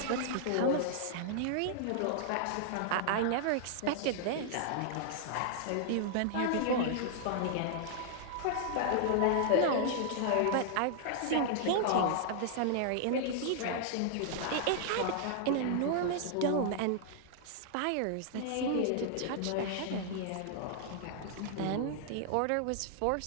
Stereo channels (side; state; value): both; different; correlation -0.01